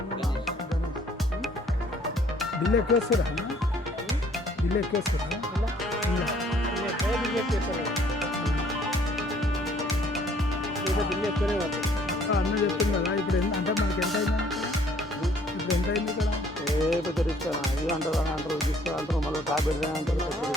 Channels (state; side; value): normal; both; correlation 0.60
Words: బిల్లు ఎక్కువ వస్తారా? బిల్లు ఎక్కువ వస్తారా? బిల్లు ఎక్కువనే పడుతుంది. అన్న చెప్పింది కదా ఇప్పుడు అంటే మనకి ఎంత అయింది ఇప్పుడు ఎంత అయింది ఇక్కడ ఏ పెద్ద రిస్క్ ఇది అంటారు అని అంటారు తీసుకుంటారు మళ్ళీ టాబ్లెట్ అంటారు.